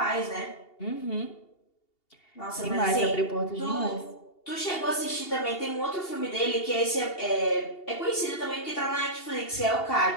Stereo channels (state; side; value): late; right; 2.8 ms